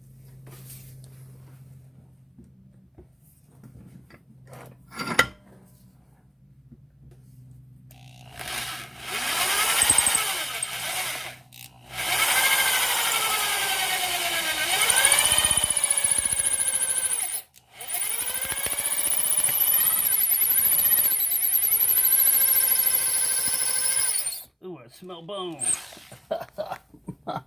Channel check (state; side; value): identical; both; correlation 1.00